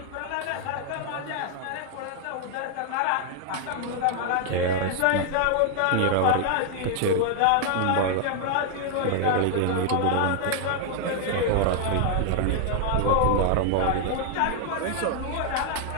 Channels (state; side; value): different; both; correlation 0.00